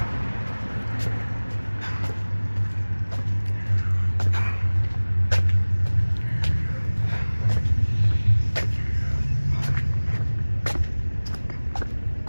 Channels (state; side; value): inverted; both; correlation -1.00